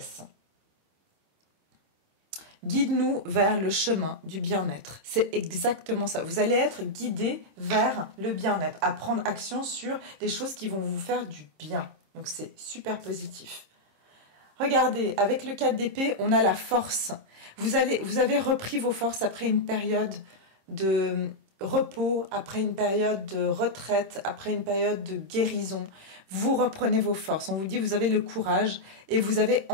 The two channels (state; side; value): late; left; 26 ms